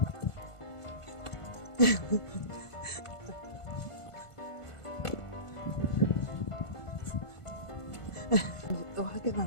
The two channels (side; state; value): right; late; 1.5 ms